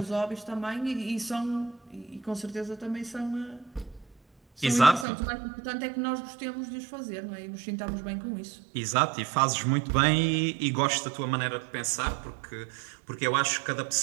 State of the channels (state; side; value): drops out; left; at 5.1 s